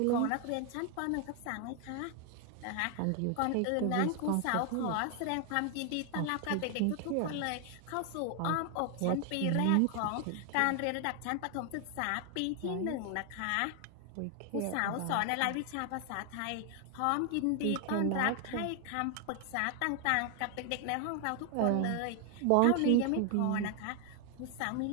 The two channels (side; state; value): both; different; correlation 0.00